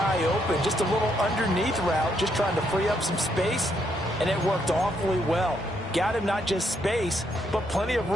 open. Just a little underneath route, just trying to free up some space, and it worked awfully well. Got him not just space, but plenty of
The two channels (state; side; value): normal; both; correlation 0.75